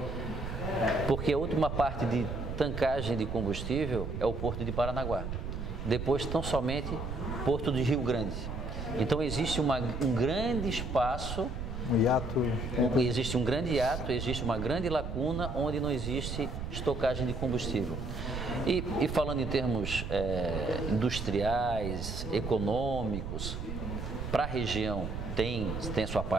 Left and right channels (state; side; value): noise; right; rumble, 5 dB below the sound